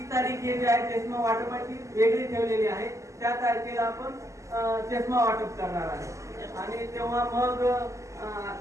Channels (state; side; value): late; left; 0.15 ms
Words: तारीख हे जे आहे चष्मा वाटपाची वेगळी ठेवलेली आहे. त्या तारखेला आपण चष्मा वाटप करणार आहे. आणि तेव्हा मग